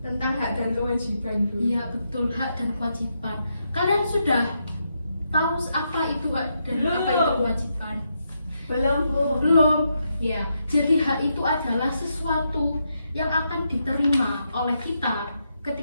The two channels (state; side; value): inverted; both; correlation -0.82